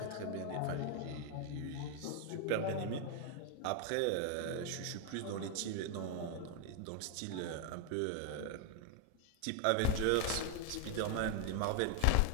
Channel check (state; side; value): different; both; correlation 0.00